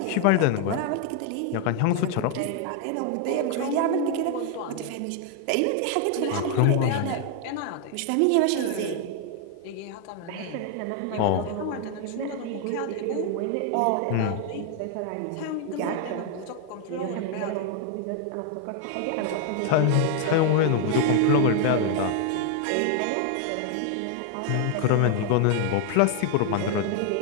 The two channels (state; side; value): different; both; correlation 0.00